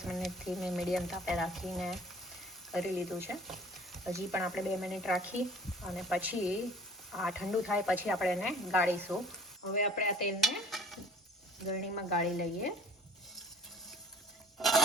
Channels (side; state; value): both; normal; correlation 0.50